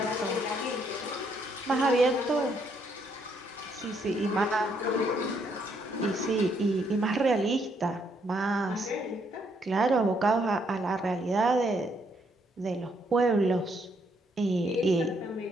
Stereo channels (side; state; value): both; normal; correlation 0.72